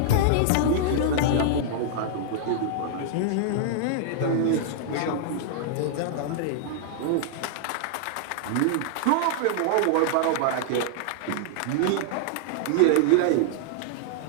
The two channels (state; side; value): different; both; correlation -0.01